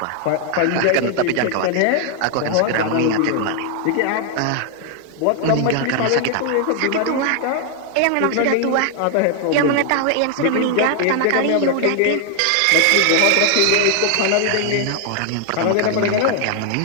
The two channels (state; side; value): different; both; correlation 0.00